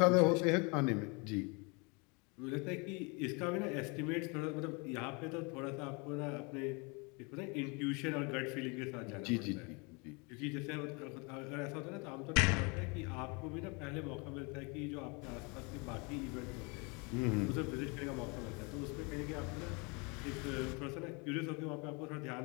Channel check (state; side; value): quieter; right; 30.5 dB